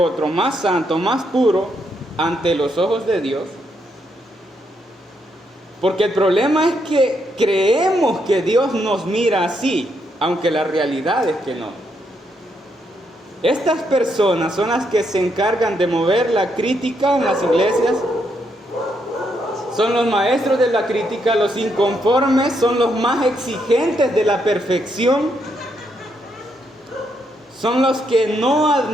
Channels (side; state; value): both; normal; correlation 0.77